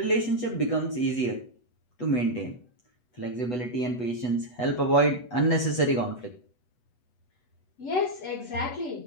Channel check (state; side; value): late; right; 8.1 ms